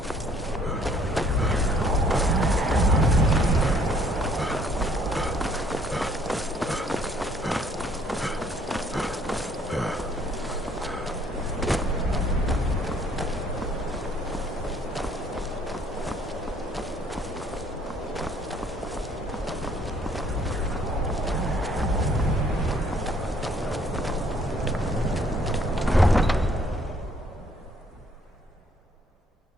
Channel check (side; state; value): both; normal; correlation 0.62